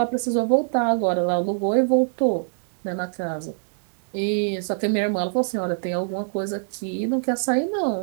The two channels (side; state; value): left; silent; 59 dB below the other